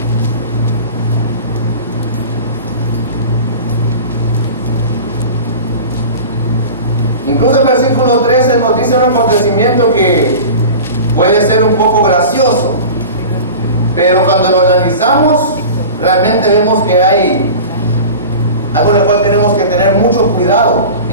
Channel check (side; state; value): both; inverted; correlation -0.35